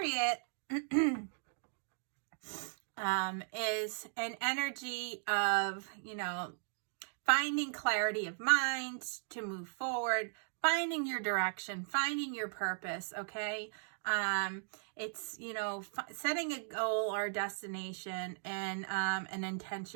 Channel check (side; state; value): left; silent; digital silence